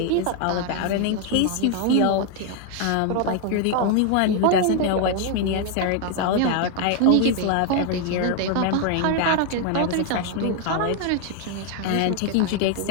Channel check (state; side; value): different; both; correlation 0.01